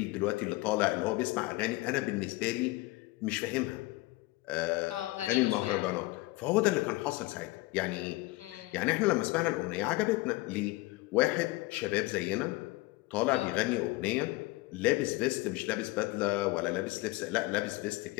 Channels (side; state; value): right; quieter; 21.0 dB